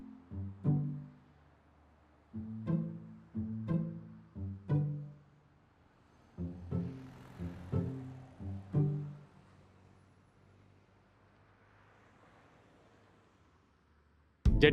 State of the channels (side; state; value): both; identical; correlation 1.00